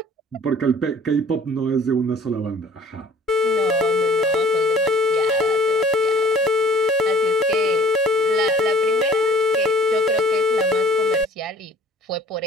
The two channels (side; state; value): both; normal; correlation 0.51